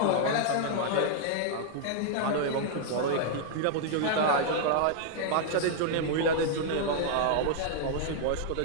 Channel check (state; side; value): different; both; correlation -0.01